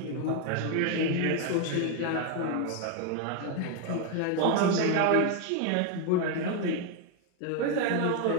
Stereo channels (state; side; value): different; both; correlation 0.01